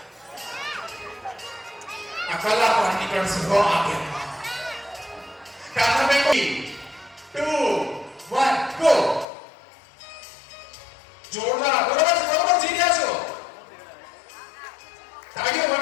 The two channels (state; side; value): drops out; right; at 9.2 s